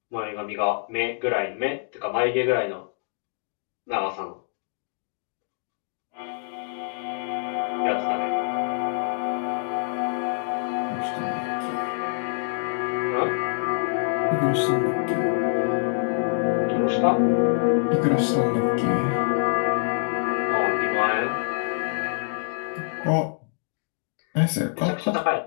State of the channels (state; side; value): silent; right; digital silence